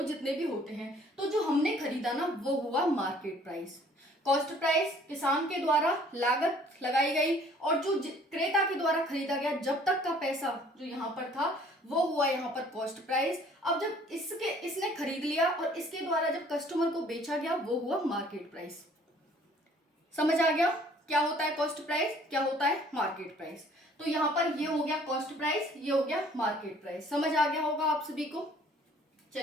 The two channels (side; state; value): both; normal; correlation 0.56